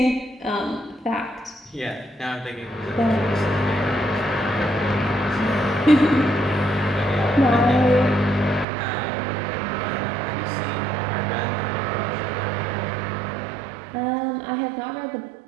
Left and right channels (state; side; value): drops out; left; at 8.7 s